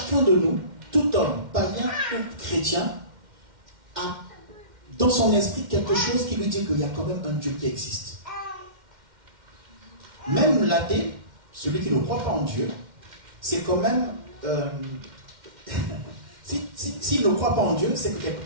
de nous, tout homme, païen ou chrétien, a dans son esprit quelque chose qui lui dit qu'il y a quand même un Dieu qui existe. Même l'athée, celui qui ne croit pas en Dieu, c'est quand même... S'il ne croit pas en Dieu, c'est que quelque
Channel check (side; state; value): left; late; 2.1 ms